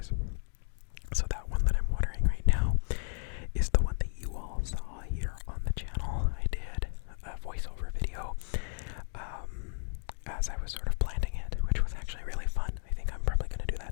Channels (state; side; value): silent; right; digital silence